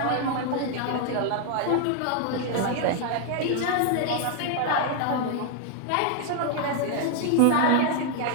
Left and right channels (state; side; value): different; both; correlation 0.00